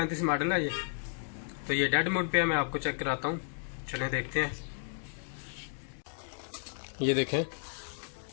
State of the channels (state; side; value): silent; right; digital silence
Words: मॉडल है ये। तो ये डेड मोड पे है, मैं आपको चेक कराता हूँ। चलें देखते हैं। ये देखें,